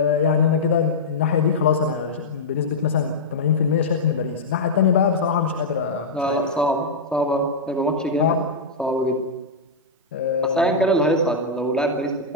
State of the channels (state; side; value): quieter; right; 3.2 dB